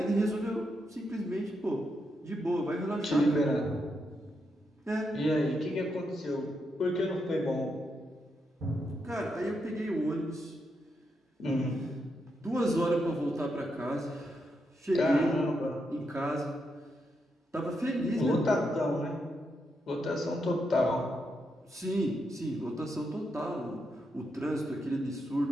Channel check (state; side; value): normal; both; correlation 0.82